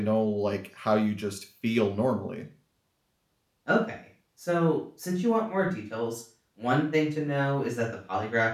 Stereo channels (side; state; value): both; identical; correlation 1.00